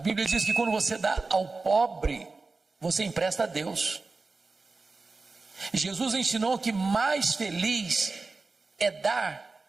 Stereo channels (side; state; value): left; quieter; 3.8 dB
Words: diz que quando você dá ao pobre, você empresta a Deus. Jesus ensinou que mais feliz é dar,